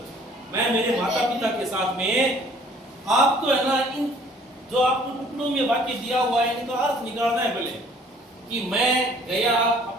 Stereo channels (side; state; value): both; normal; correlation 0.56